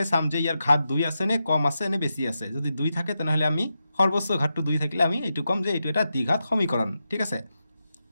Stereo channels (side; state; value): both; inverted; correlation -0.88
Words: চাম যে ইয়াৰ ঘাত 2 আছে নে কম আছে নে বেছি আছে। যদি 2 থাকে তেনেহ'লে আমি সৰ্বোচ্চ ঘাতটো 2 থাকিলে আমি এইটো ক'ম যে এইটো এটা দ্বিঘাত সমীকৰণ, ঠিক আছে।